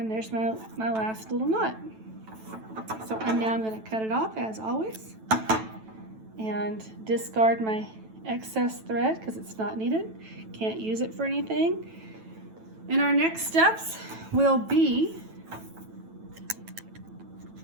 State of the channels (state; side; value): late; left; 9.1 ms